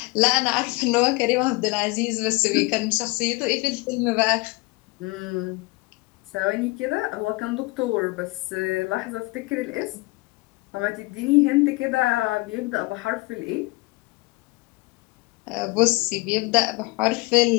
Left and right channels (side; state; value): right; quieter; 24.1 dB